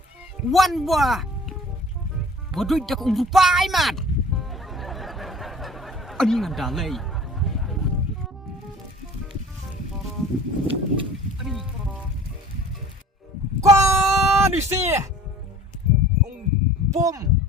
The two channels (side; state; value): both; normal; correlation 0.47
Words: Wan buah. Bodoh dah kau rupai mat. Ani nganda lei. Ani. Qua đi xe. Ông bom.